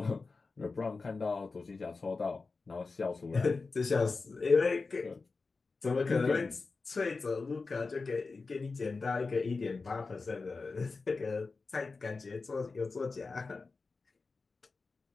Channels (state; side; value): quieter; right; 4.1 dB